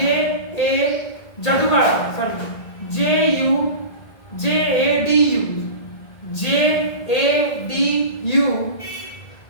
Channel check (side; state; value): right; late; 1.8 ms